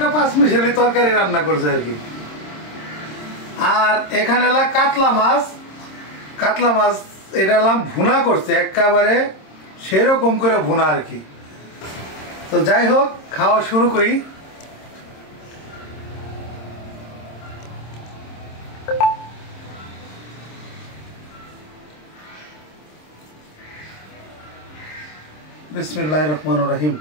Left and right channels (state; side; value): late; right; 26 ms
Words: পাঁচ মিশালি তরকারি রান্না করছে আর কি। আর এখানে এলাম কাতলা মাছ, কাতলা মাছ এটা এলাম ভুনা করছে একেবারে সেরকম করে ভুনা আর কি। তো যাই হোক, খাওয়া শুরু করি। বিসমিল্লাহির রহমানির রহিম।